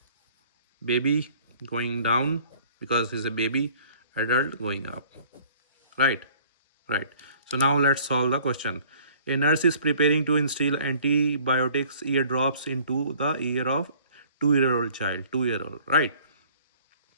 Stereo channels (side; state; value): both; inverted; correlation -0.54